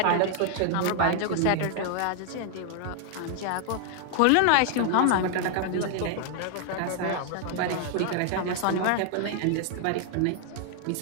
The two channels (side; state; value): both; different; correlation 0.00